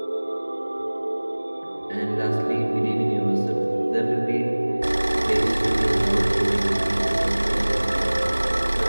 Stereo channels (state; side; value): inverted; both; correlation -1.00